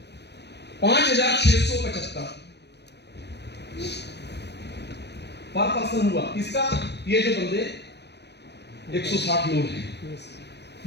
पर पर्सन हुआ इसका। ये जो बंदे 160 लोग हैं,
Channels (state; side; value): late; right; 0.50 ms